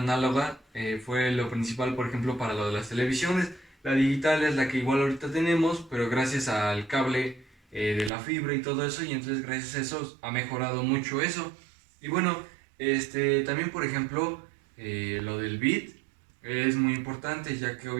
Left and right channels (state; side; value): drops out; left; at 8.1 s